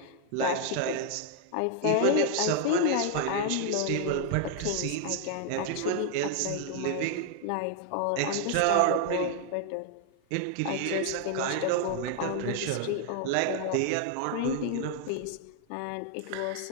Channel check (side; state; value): both; different; correlation 0.00